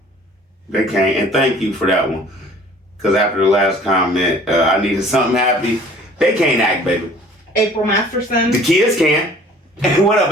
They can't. And thank you for that one. Because after the last comment, I needed something happy. They can't act, baby. April Masterson. The kids can. What up,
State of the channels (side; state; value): both; normal; correlation 0.51